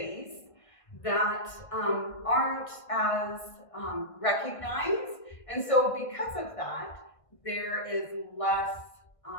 that aren't as recognized. And so because of that, there is less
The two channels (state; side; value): late; right; 1.6 ms